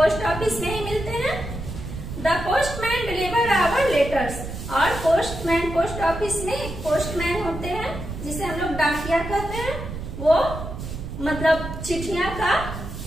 ऑफिस में ही मिलते हैं। The postman deliver our letters. और पोस्टमैन, पोस्ट ऑफिस में एक पोस्टमैन होते हैं जिसे हम लोग डाकिया कहते हैं। वो मतलब चिट्ठियां का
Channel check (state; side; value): noise; right; rumble, 8 dB below the sound